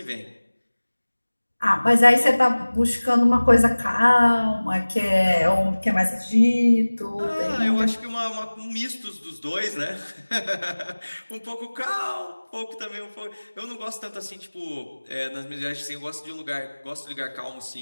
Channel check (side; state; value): both; inverted; correlation -1.00